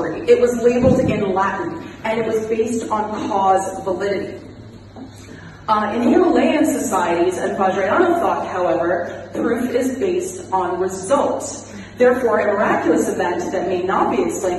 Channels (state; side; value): identical; both; correlation 1.00